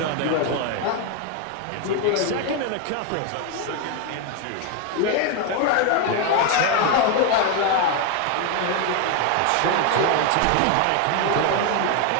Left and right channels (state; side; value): different; both; correlation 0.01